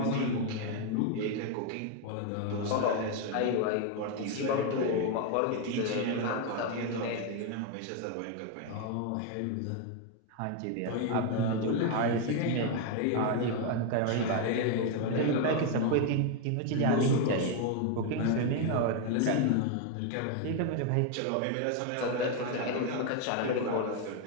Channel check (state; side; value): different; both; correlation 0.01